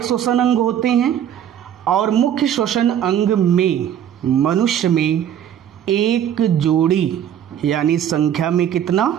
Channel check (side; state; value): left; quieter; 9.8 dB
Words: श्वसन अंग होते हैं और मुख्य श्वसन अंग में मनुष्य में एक जोड़ी यानी संख्या में कितना?